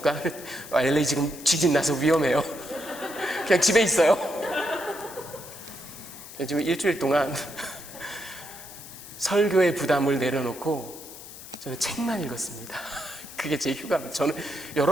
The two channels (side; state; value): left; noise; hiss, 15 dB below the sound